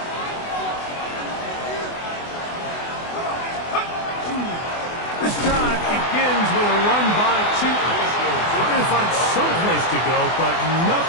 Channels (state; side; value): late; right; 24 ms